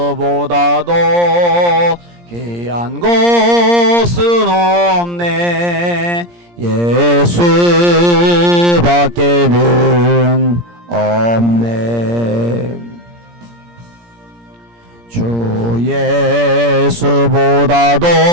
귀한 곳은 없네. 예수밖에는 없네. 주 예수보다도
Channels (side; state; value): left; late; 17 ms